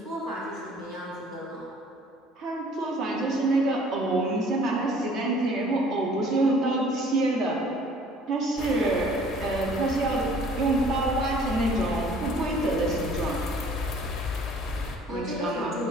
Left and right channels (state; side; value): normal; both; correlation 0.54